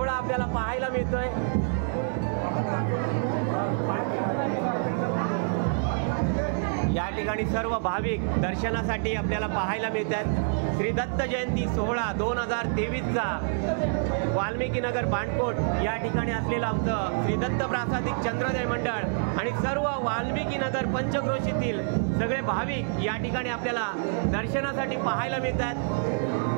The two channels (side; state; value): left; silent; 59 dB below the other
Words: आपल्याला पाहायला मिळतोय. या ठिकाणी सर्व भाविक दर्शनासाठी आपल्याला पाहायला मिळतात. श्री दत्त जयंती सोहळा 2023चा वाल्मिकी नगर बांडकोट या ठिकाणी असलेलं आमचं श्री दत्त प्रासादिक चंद्रोदय मंडळ आणि सर्व वाल्मिकी नगर पंचक्रोशीतील सगळे भाविक या ठिकाणी आपल्याला दर्शनासाठी पाहायला मिळतात.